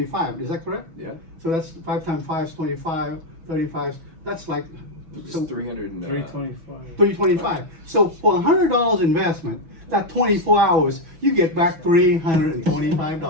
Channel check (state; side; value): late; left; 6.1 ms